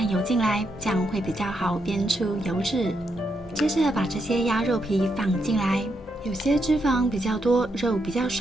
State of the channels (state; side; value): normal; both; correlation 0.81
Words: 油进来，这样会比较好煸出油脂。接着把这些鸭肉皮放进来，有些脂肪比较多、肉比较